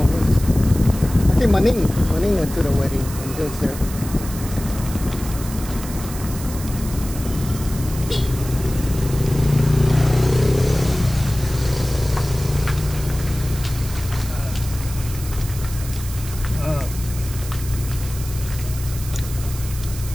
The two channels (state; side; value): noise; right; hiss, 13 dB below the sound